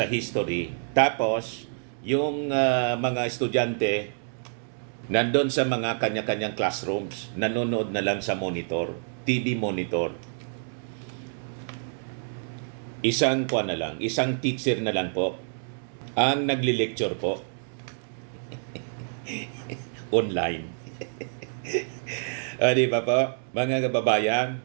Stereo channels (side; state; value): left; silent; digital silence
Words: history, tapos yung mga estudyante nandun sa mga kanya-kanyang classrooms, nanonood na lang sa monitor, TV monitor. Isang teacher na lang po ang nagli-lecture po online. Di ba po, mga kababayan?